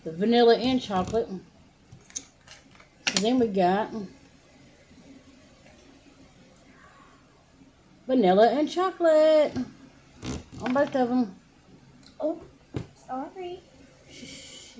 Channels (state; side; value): identical; both; correlation 1.00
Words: vanilla and chocolate. So then we got vanilla and chocolate on both of them. Oh, sorry.